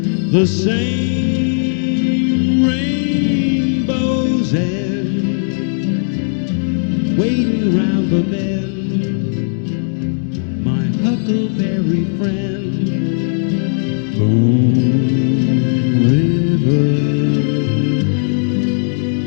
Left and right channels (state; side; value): silent; right; digital silence